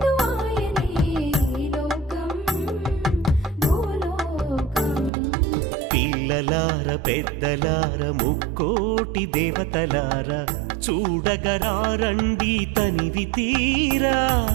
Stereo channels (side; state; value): left; drops out; at 5.1 s